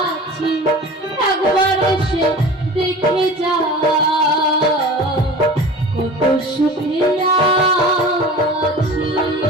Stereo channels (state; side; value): normal; both; correlation 0.38